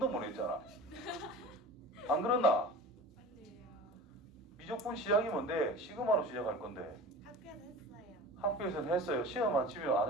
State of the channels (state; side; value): normal; both; correlation 0.36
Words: 못 했잖아. 안 그렇나? 아니에요. 미적분 시작이 뭔데? 시그마로 시작할 건데. 학교에서 했어요. 학교에서는 했어요. 시험 안 치면